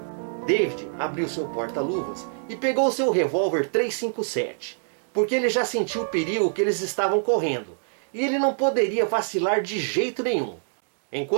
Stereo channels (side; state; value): left; silent; digital silence